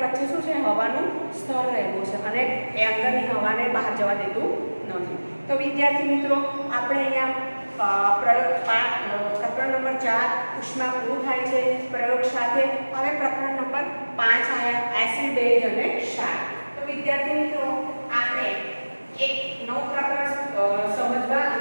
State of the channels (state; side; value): inverted; both; correlation -1.00